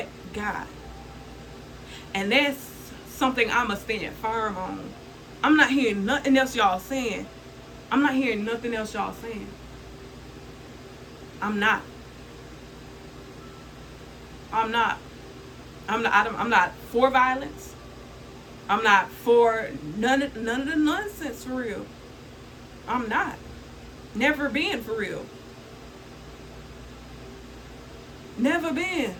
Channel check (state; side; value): identical; both; correlation 1.00